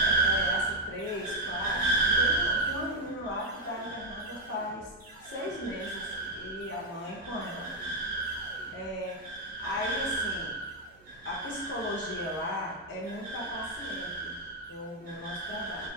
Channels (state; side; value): noise; right; hum, 28 dB below the sound